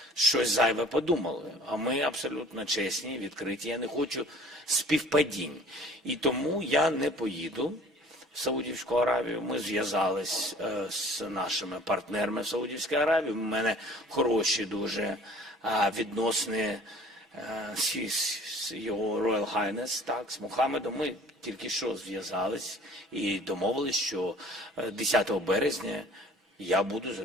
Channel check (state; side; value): normal; both; correlation 0.49